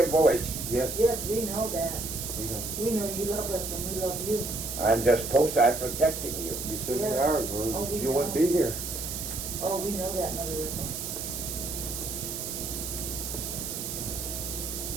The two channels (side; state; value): right; noise; hiss, 5 dB below the sound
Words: voice. Yes. Yes, we know that. We know. We know you love us and we love you. I'm just I'm protecting you. You certainly Yes. are, or Oh, we you wouldn't know. be here. Oh, we know that, Mother Riffle.